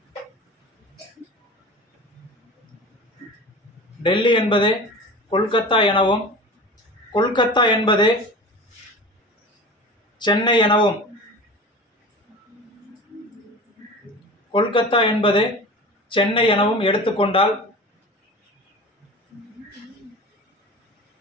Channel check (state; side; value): normal; both; correlation 0.35